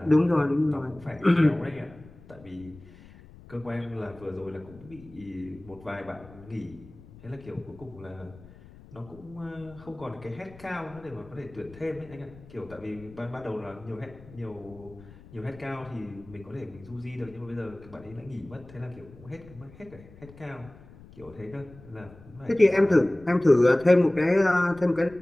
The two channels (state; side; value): noise; left; rumble, 21 dB below the sound